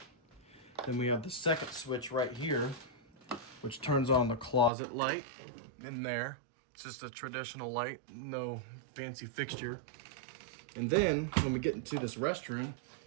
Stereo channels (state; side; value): drops out; left; at 4.7 s